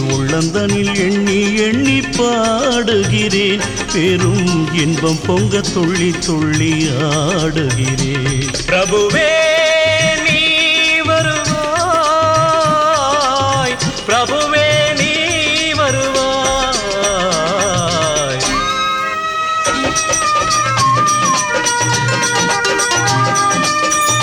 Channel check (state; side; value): identical; both; correlation 1.00